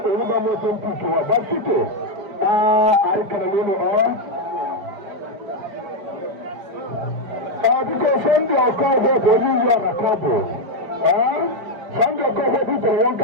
Uruba Mosun Pichu, Basito. I can because Sunday I'll call her for you on a couple. Sunday I'll call her people one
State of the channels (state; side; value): late; left; 5.0 ms